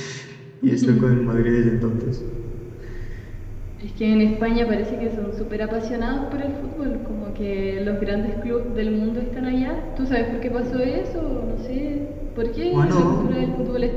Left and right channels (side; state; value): both; identical; correlation 1.00